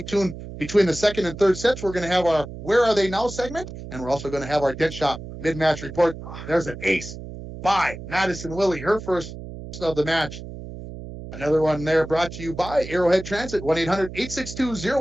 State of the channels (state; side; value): noise; right; hum, 11 dB below the sound